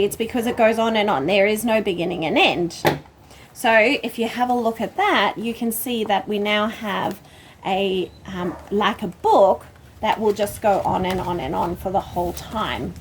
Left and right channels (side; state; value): both; identical; correlation 1.00